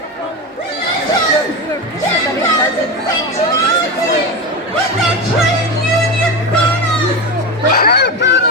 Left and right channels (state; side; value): normal; both; correlation 0.19